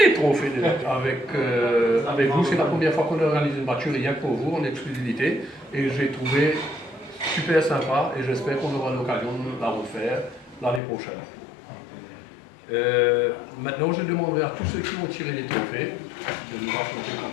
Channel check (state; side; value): drops out; right; at 10.8 s